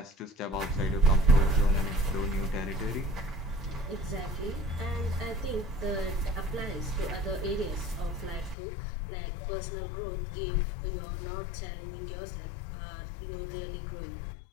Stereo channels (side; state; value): right; drops out; at 8.6 s